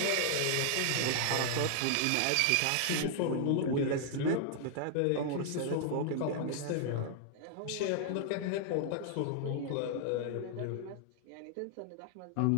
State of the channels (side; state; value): both; different; correlation 0.00